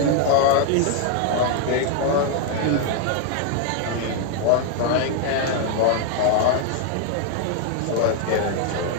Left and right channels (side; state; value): both; different; correlation 0.00